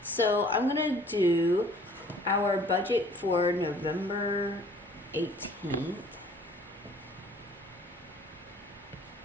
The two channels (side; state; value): both; normal; correlation 0.54